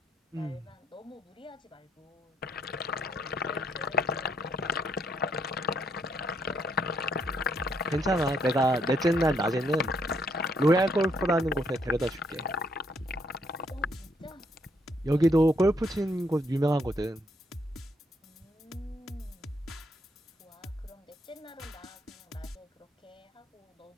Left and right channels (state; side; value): normal; both; correlation 0.72